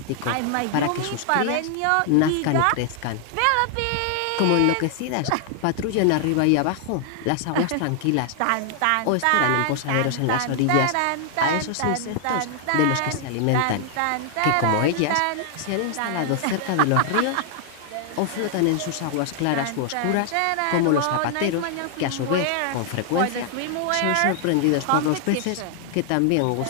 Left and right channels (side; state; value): both; different; correlation 0.00